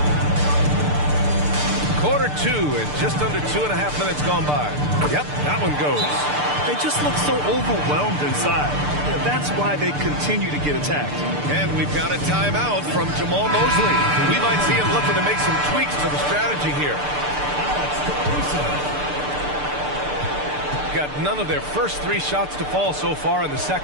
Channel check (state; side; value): late; left; 6.8 ms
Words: Quarter 2 and just under 2.5 minutes gone by. Yep, that one goes. They just look so overwhelmed inside. That's why they continue to get attacked. And we've got a timeout from Jamal Mosley. We might see him looking to make some tweaks to the strategy here. Got none of their first 3 shots to fall so far in the